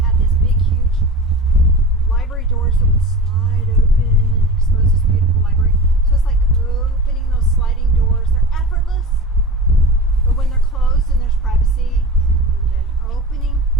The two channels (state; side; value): normal; both; correlation 0.32